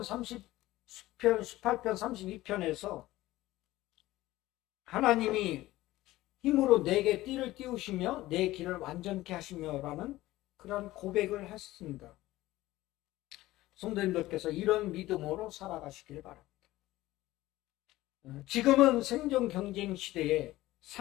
32편에서 하나님이 힘으로 내게 띠를 띄우시며 내 길을 완전케 하시며라는 그런 고백을 했습니다. 성도님들께서 이런 믿음으로 살아가시길 바랍니다. 지금은 생존 경쟁 시대에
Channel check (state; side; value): quieter; right; 17.0 dB